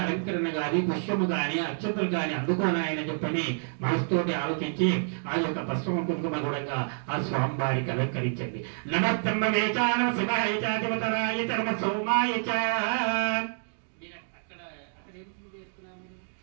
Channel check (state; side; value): silent; left; digital silence